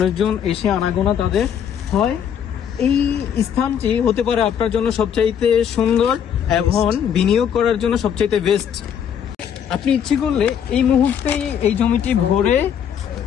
এসে আনাগোনা তাদের হয়। এই স্থানটি হতে পারে আপনার জন্য সবচাইতে সুন্দর এবং বিনিয়োগ করার জন্য সবচাইতে বেস্ট। আপনি ইচ্ছে করলে এই মুহূর্তে এই জমিটি ভরে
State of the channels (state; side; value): quieter; right; 8.5 dB